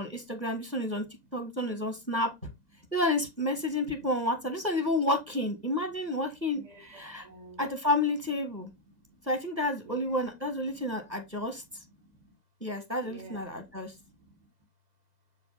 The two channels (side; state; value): left; late; 1.5 ms